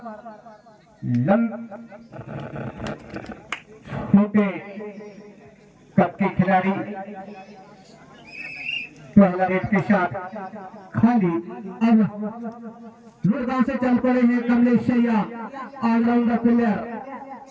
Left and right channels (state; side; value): identical; both; correlation 1.00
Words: छोटे कप के खिलाड़ी पहला रेड के साथ खाली। अब लुड़गांव से चल पड़े हैं कमलेश शैया, ऑलराउंडर प्लेयर